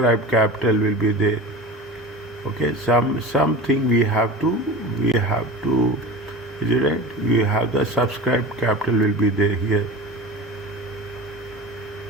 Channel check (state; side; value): normal; both; correlation 0.33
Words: capital will be there. Okay, something we have to is it right? We have the subscribed capital will be there here.